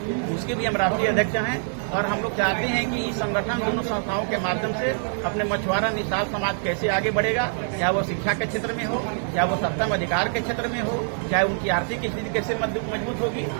उसके भी हम राष्ट्रीय अध्यक्ष हैं। और हम लोग चाहते हैं कि इस संगठन दोनों संस्थाओं के माध्यम से अपने मछुआरा निषाद समाज कैसे आगे बढ़ेगा, चाहे वो शिक्षा के क्षेत्र में हो, चाहे वो सत्ता में अधिकार के क्षेत्र में हो, चाहे उनकी आर्थिक स्थिति कैसे मजबूत होगी।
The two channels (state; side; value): silent; left; digital silence